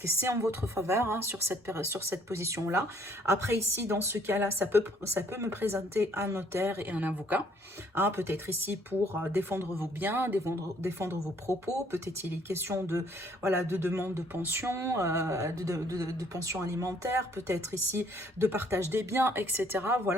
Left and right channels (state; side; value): normal; both; correlation 0.63